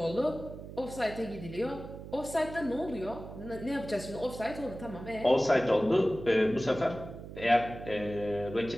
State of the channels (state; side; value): noise; right; hum, 12 dB below the sound